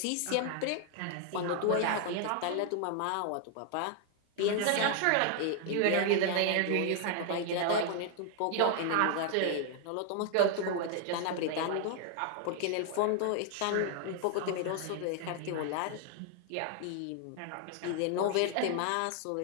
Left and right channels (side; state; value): both; different; correlation 0.00